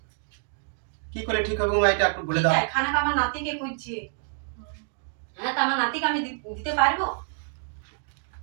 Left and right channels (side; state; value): left; silent; 57 dB below the other